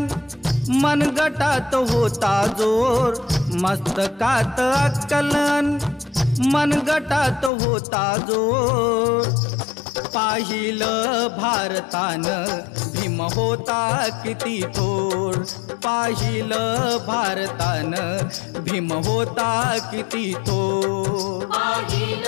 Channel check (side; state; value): right; drops out; at 7.5 s